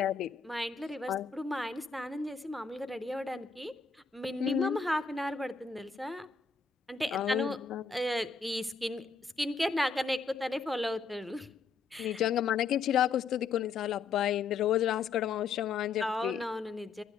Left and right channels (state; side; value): quieter; right; 5.1 dB